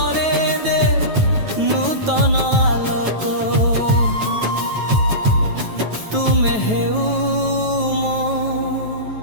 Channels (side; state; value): left; late; 9.2 ms